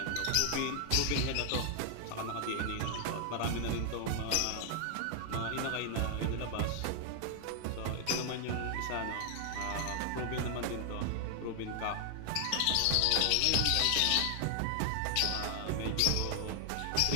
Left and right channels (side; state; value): both; different; correlation 0.00